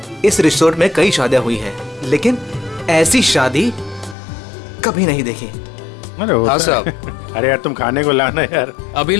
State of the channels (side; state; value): right; drops out; at 4.2 s